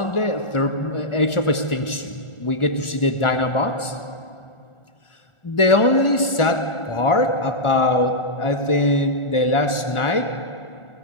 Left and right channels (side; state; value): right; late; 1.4 ms